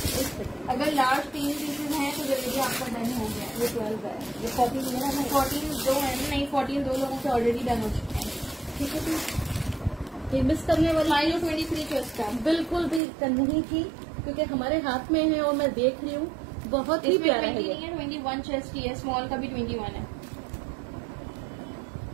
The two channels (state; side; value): drops out; left; at 13.0 s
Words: अगर लार्ज 3 पीसेज हैं तो जल्दी आपका डन हो गया। ये 12 है, ये 14 है ना? 14 दो है नहीं, 14 2 लोगों के ऑलरेडी डन हो चुके हैं। ठीक है जी, ये मिस करने वाली माइलो 23 चेस्ट का बिल्कुल भी नहीं थी, क्योंकि हमारे हाथ में है और मैं देख रही हूँ, बहुत ही प्यारा है। 21 चेस्ट की है, स्मॉल का भी 21 है।